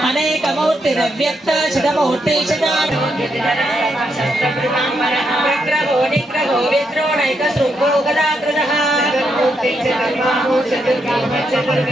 अनेकमूर्तिरव्यक्त शिवमूर्ति विग्रहो निग्रहो विद्रोणैकशृङ्गो गदाकृतः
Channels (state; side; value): normal; both; correlation 0.80